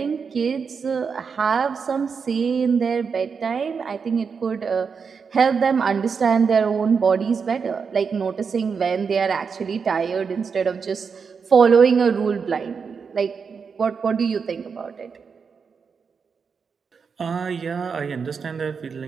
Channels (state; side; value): quieter; left; 5.8 dB